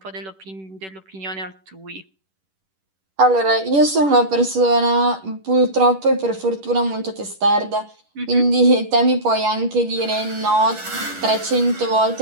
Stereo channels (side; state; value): left; late; 10 ms